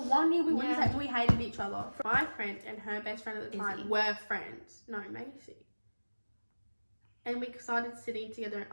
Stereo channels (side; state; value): both; inverted; correlation -1.00